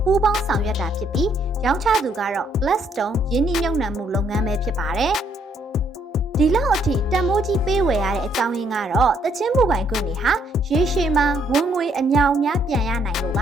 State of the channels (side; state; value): both; normal; correlation 0.69